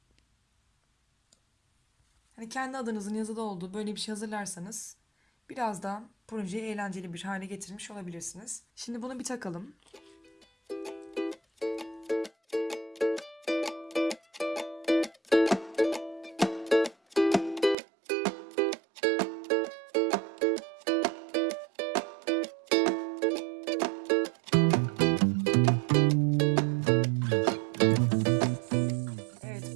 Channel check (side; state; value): left; drops out; at 17.8 s